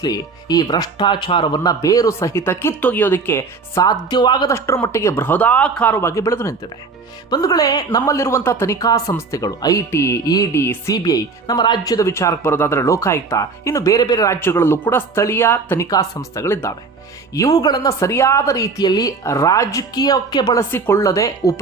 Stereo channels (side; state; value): left; quieter; 4.5 dB